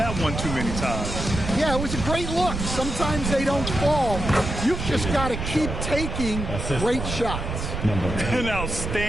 one too many times. Yeah, it was a great look. Sometimes they don't fall. You've just got to keep taking great shots. An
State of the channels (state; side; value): noise; right; rumble, 5 dB below the sound